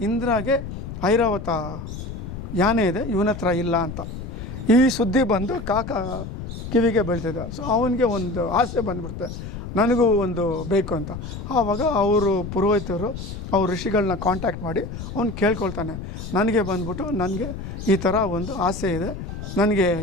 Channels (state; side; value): noise; left; rumble, 8 dB below the sound